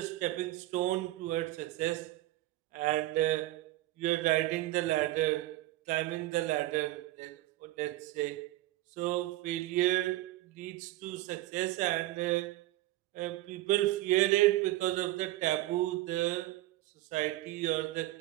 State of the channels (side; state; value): left; quieter; 16.7 dB